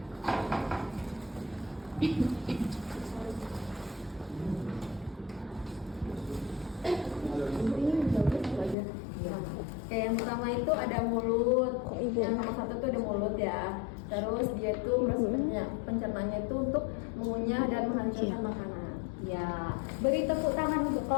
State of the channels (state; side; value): drops out; right; at 8.8 s